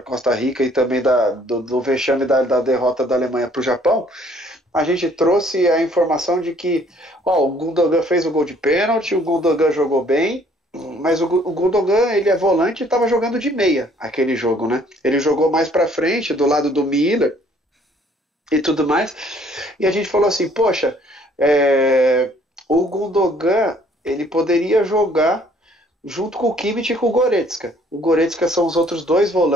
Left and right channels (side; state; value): both; normal; correlation 0.60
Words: Costa Rica e também do vexame da derrota da Alemanha para o Japão. A gente trouxe a informação de que o Gundogan fez o gol de pênalti, o Gundogan jogou bem, mas o Gundogan, ele é volante e estava jogando de meia aquele jogo, né? Ele jogou mais para frente, do lado do Miller e tudo mais. E a gente falou assim, poxa, o Gundogan, ele poderia jogar junto com o Kimmich e com o Goretzka. O Goretzka são os outros dois